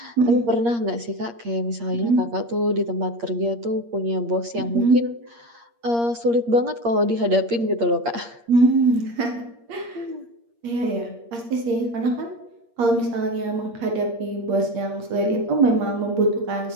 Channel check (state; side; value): late; left; 8.6 ms